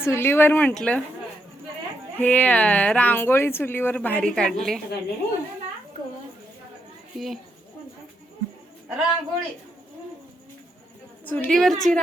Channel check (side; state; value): both; normal; correlation 0.80